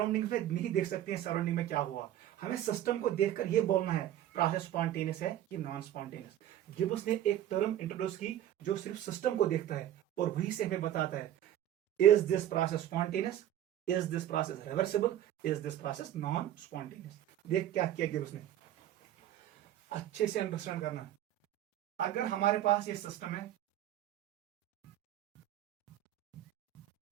में नहीं देख सकते हैं सराउंडिंग में क्या हुआ, हमें सिस्टम को देखकर ये बोलना है प्रोसेस स्पॉन्टेनियस है कि नॉन स्पॉन्टेनियस। गिब्स ने एक टर्म इंट्रोड्यूस की जो सिर्फ सिस्टम को देखता है और वही से हमें बताता है is this process spontaneous, is this process reversible, is this process non spontaneous. देख क्या किया गिब्स ने, अच्छे से अंडरस्टैंड करना। अगर हमारे पास ये सिस्टम है,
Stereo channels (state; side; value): quieter; left; 12.1 dB